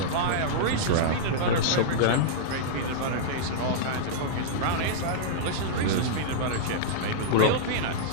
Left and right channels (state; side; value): different; both; correlation -0.03